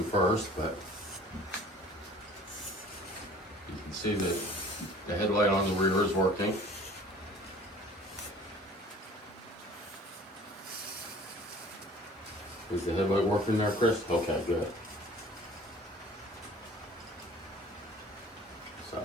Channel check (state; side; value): normal; both; correlation 0.49